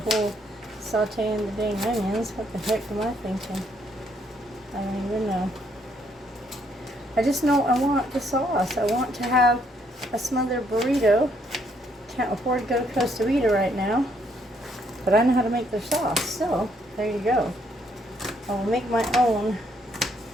sauteing the dang onions. What the heck am I thinking? I don't even know. I just know I want the sauce. I want to have a smothered burrito. Can't afford to go to Costa Vida right now, but I know how to make their sauce. So there you go. I'll make my own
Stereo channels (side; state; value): both; normal; correlation 0.70